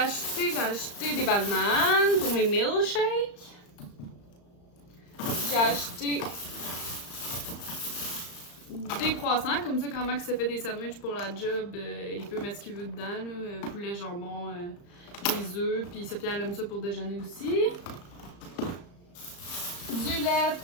des bananes pour mes milkshakes. J'ai acheté des croissants, comme ça quand Max se fait des sandwichs pour la job, il peut mettre ce qu'il veut dedans, là, poulet, jambon, des œufs, puis Sophia elle aime ça pour déjeuner aussi. Du lait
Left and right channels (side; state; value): right; late; 35 ms